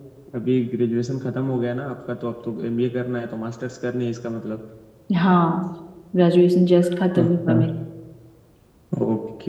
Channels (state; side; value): identical; both; correlation 1.00